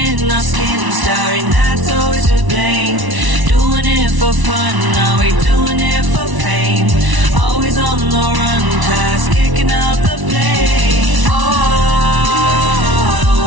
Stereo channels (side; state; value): left; late; 1.0 ms